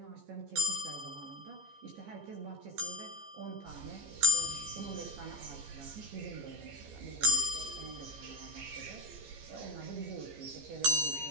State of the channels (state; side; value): late; left; 15 ms